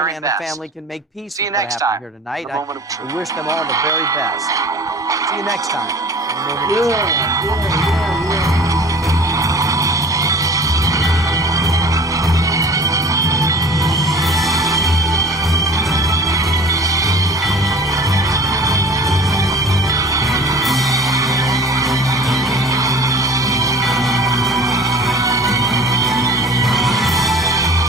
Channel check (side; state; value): both; normal; correlation 0.43